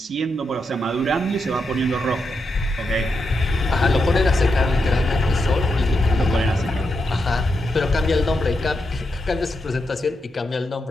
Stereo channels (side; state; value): both; normal; correlation 0.85